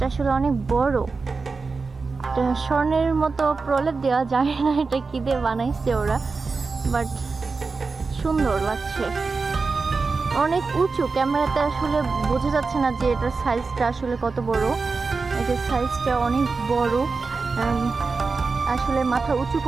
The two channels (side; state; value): left; quieter; 4.3 dB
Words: আসলে অনেক বড়। এটা স্বর্ণের মতো প্রলেপ দেওয়া যায় না, এটা কি দিয়ে বানাইছে ওরা, বাট সুন্দর লাগছে। অনেক উঁচু, ক্যামেরাতে আসলে বোঝা যাচ্ছে না যে এটার সাইজটা আসলে কত বড়। এটার সাইজটা অনেক বড়, আসলে মাথা উঁচু